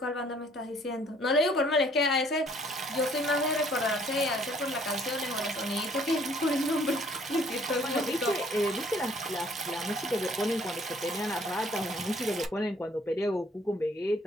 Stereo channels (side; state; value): both; normal; correlation 0.60